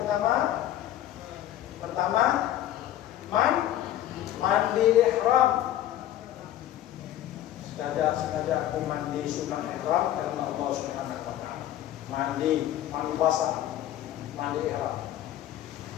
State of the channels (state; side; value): quieter; right; 12.7 dB